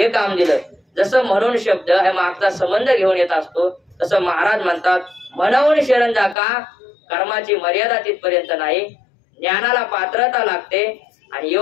काम दिलं. जसं म्हणून शब्द हे मागचा संबंध घेऊन येत असतो, तसं महाराज म्हणतात, म्हणून शरण जा का, कर्माची मर्यादा तिथपर्यंत नाही, ज्ञानाला पात्रता लागते आणि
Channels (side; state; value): right; drops out; at 6.4 s